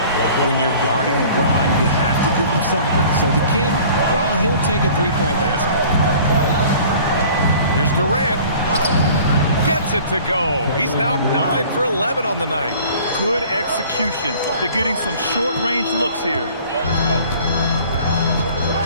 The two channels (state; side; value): inverted; both; correlation -0.48